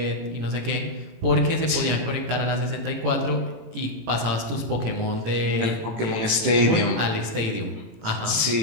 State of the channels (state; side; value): late; left; 18 ms